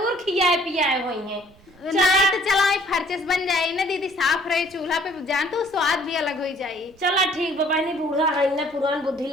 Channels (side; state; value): right; noise; rumble, 27 dB below the sound